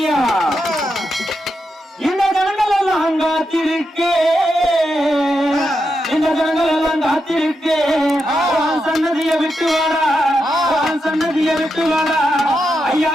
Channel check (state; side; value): normal; both; correlation 0.85